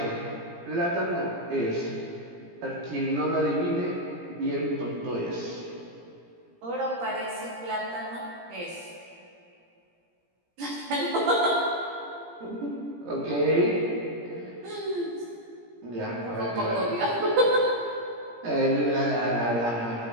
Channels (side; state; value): left; late; 17 ms